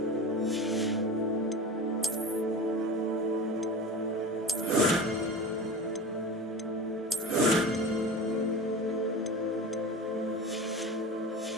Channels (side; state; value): both; normal; correlation 0.31